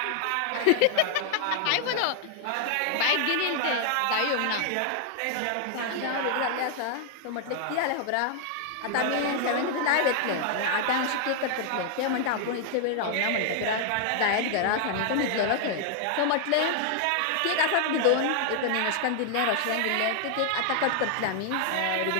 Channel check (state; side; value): different; both; correlation 0.00